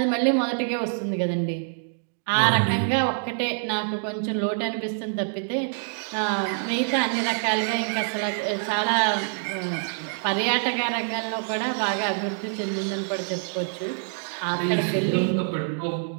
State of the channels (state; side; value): silent; left; 61 dB below the other